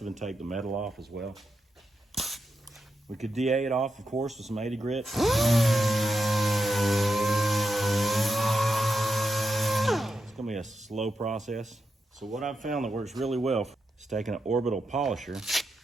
and take the metal off as well. We could DA it off, of course, with some 80 grit. It's going to be a slow process. So what I've found that works really well is taking an orbital polisher.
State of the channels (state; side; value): normal; both; correlation 0.86